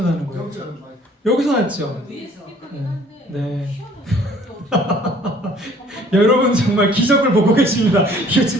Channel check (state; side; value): normal; both; correlation 0.55